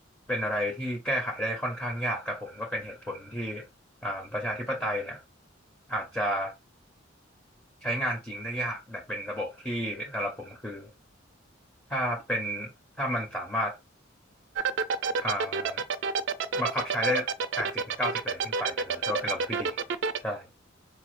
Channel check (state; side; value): normal; both; correlation 0.32